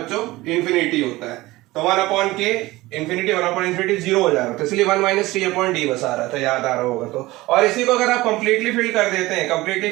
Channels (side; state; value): left; quieter; 19.2 dB